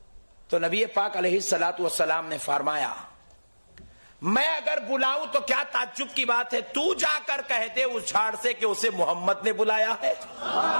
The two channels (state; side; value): inverted; both; correlation -1.00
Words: تو نبی پاک علیہ الصلوۃ والسلام نے فرمایا میں اگر بلاؤں تو کیا تعجب کی بات ہے, تو جا کر کہہ دے اس جھاڑ سے کہ اسے محمد نے بلایا ہے.